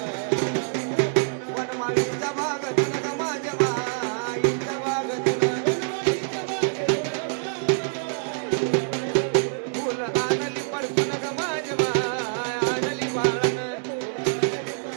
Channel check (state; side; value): silent; left; 61 dB below the other